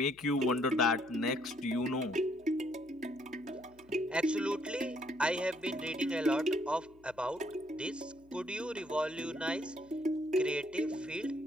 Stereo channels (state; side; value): noise; left; hum, 29 dB below the sound